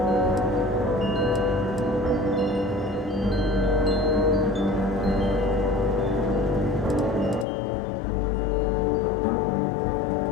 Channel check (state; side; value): drops out; right; at 7.5 s